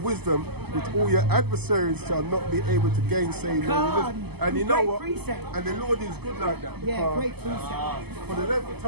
wisdom which all your adversaries shall not be able to gainsay. And you know Great what? precept. And the Lord is good like that. Yeah, because great precept. for the length of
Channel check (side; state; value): left; late; 0.97 ms